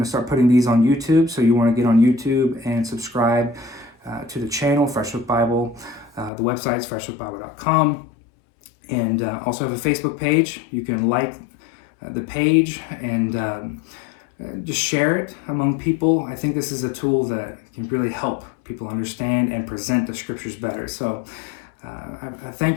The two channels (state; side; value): drops out; right; at 6.3 s